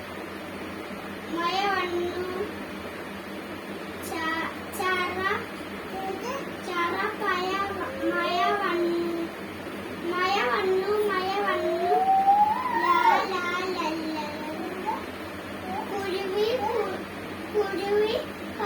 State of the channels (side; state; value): both; identical; correlation 1.00